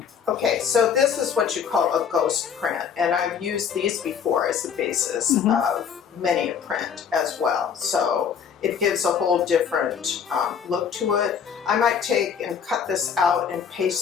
Okay, so this is what you call a ghost print, and I've used these before as the basis of many a print as well. So it gives a whole different look to it. I might take and cut this out and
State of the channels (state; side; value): quieter; right; 7.2 dB